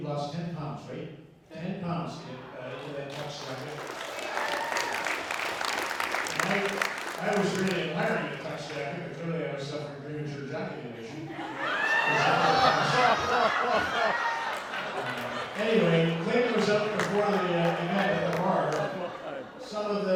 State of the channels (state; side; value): identical; both; correlation 1.00